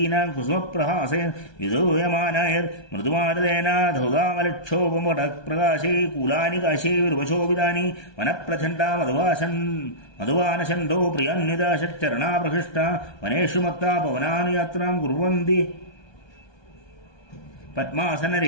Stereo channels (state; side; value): late; right; 1.2 ms